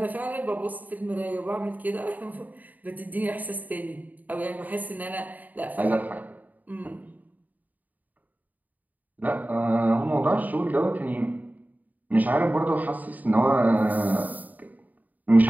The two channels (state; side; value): late; left; 0.080 ms